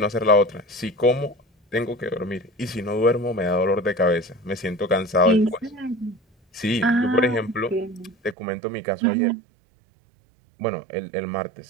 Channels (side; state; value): left; drops out; at 8.3 s